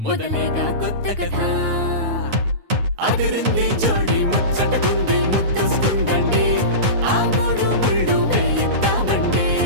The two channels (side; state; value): left; late; 9.3 ms